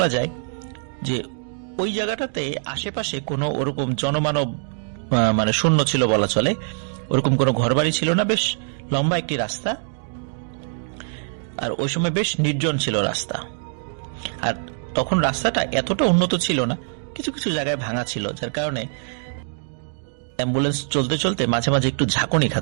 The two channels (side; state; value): left; silent; digital silence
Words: যায় যে ওই জায়গাটাতে আশেপাশে কোনো ওরকম জনমানব মানে শূন্য ছিল বলা চলে। ওরকম কোনো ঘরবাড়ি ছিল না, বেশ লম্বা একটি রাস্তা, আর ওই সময় বেশ নির্জন ছিল রাস্তা। আর তখন রাস্তাটা এতটা উন্নত ছিল না, কিছু কিছু জায়গায় ভাঙা ছিল, যার কারণে অ্যাম্বুলেন্স চলতে চলতে মাঝে মাঝে একটু ঝাঁকুনি